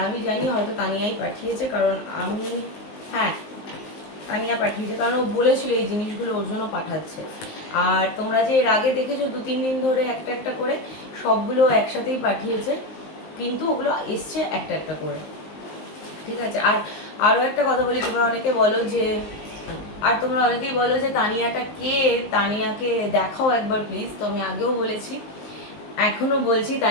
আমি জানি হয়তো তানিয়াই পাঠিয়েছে, কারণ আমি, হ্যাঁ তানিয়া পাঠিয়েছে, কারণ ও বলেছিল এই জিনিসগুলো ওর জন্য পাঠাচ্ছে। আর তোমরা যে এর আগে দেখেছো 2-3 দিন ধরে একটা একটা করে সবগুলো একসাথেই পাঠিয়েছে, কিন্তু ওগুলো এসছে একটা একটা করে। ঠিক আছে, আর আরও একটা কথা বলি, তোমরা অনেকে বলো যে, আর তোমরা অনেকেই বলো যে তানিয়াটা কে, তানিয়াকে দেখাও একবার প্লিজ। তো আমি আগেও বলেছি, এখনও বলছি,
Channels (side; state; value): right; late; 19 ms